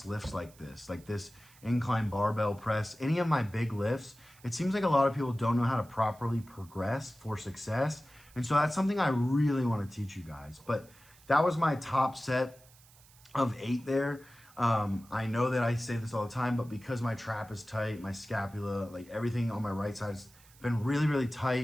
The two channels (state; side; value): noise; right; hiss, 26 dB below the sound